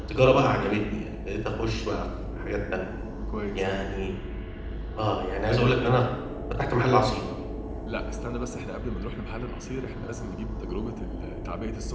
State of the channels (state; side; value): identical; both; correlation 1.00